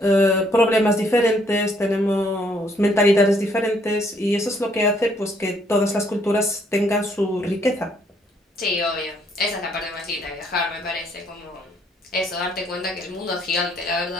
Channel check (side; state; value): both; normal; correlation 0.67